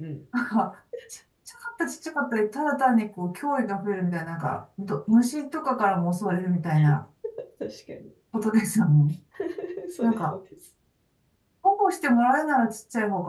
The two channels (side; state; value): both; identical; correlation 1.00